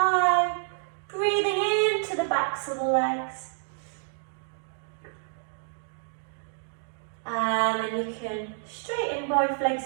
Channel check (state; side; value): silent; left; digital silence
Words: breathing into the backs of the legs. And then you can straighten both